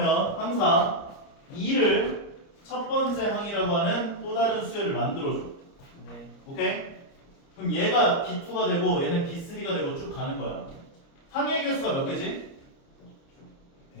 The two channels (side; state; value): right; late; 29 ms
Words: 항상 2를 첫 번째 항이라고 하는 또 다른 수열을 만들어줘. 네. 오케이? 그럼 얘가 B2가 되고 얘는 B3가 되고 쭉 가는 거야. 항의 개수가 몇 개지?